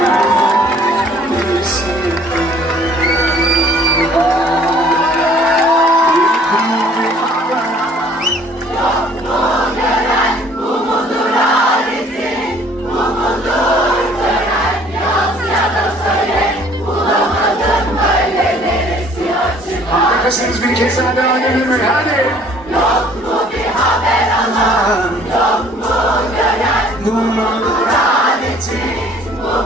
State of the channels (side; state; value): both; normal; correlation 0.56